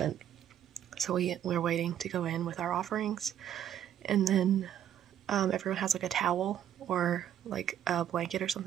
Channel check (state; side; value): quieter; left; 10.4 dB